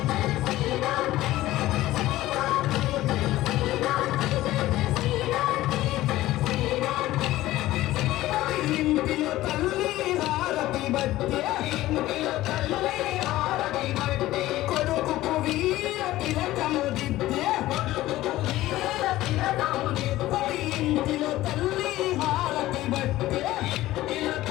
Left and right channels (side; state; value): right; quieter; 16.1 dB